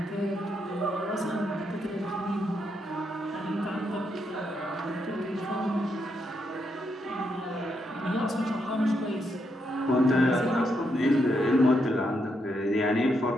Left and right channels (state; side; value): normal; both; correlation 0.80